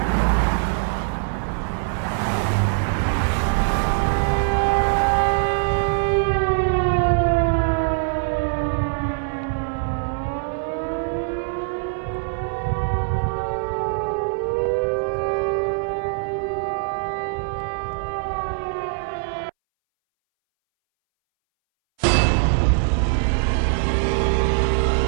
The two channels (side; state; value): left; silent; 62 dB below the other